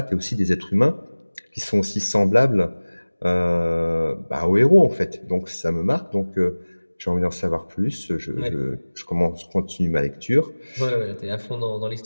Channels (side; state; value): both; inverted; correlation -1.00